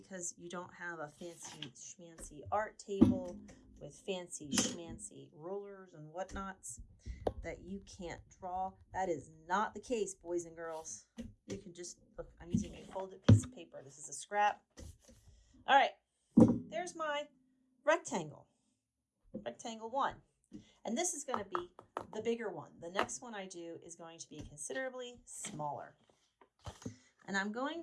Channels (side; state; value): both; identical; correlation 1.00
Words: you don't have a fancy schmancy art table with fancy schmancy rulers and whatnots that you can't draw. That is not the case, boys and girls. You can just, look, I'm using a folded piece of paper. This is a scrap. All right, there's my rectangle. Rectangle 1. And this is going to be the bigger one. The next one I do is going to be considerably smaller. And I'm